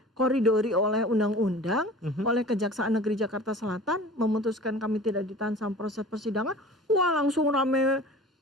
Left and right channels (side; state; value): both; normal; correlation 0.42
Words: oleh undang-undang, oleh Kejaksaan Negeri Jakarta Selatan, memutuskan kami tidak ditahan sama proses persidangan, wah langsung rame